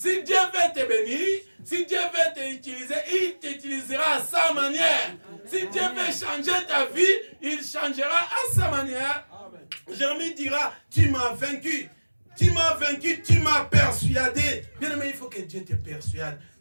Dieu veut te bénir, si Dieu veut t'utiliser, il t'utilisera à sa manière. Si Dieu veut changer ta vie, il changera à sa manière. Jérémie dira, tu m'as vaincu. Tu m'as vaincu, tu m'as persuadé. Bien aimé, il faut que Dieu te persuade.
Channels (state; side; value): inverted; both; correlation -1.00